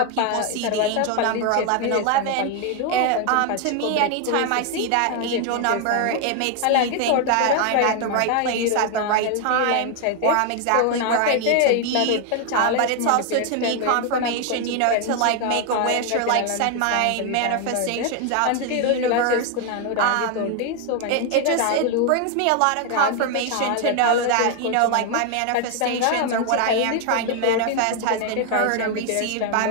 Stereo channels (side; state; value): both; different; correlation 0.01